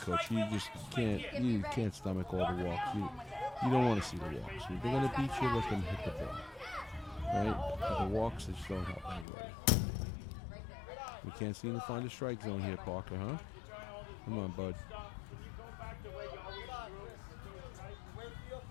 You just can't stomach all the walks. You don't want to see the walks. If they're going to beat you, let them hit the ball. Right? But the walks, they just don't help anybody. We can't seem to find a strike zone here, Parker, huh? Come on, bud. Come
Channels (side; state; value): right; drops out; at 9.2 s